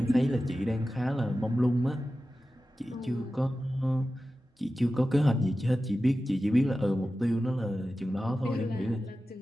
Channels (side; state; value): both; normal; correlation 0.94